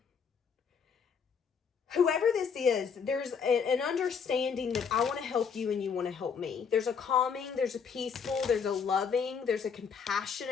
Whoever this is, there's an understanding that I want to help you and you want to help me. There's a calming, there's a peaceful, there's a loving, there's a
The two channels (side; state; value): right; quieter; 6.3 dB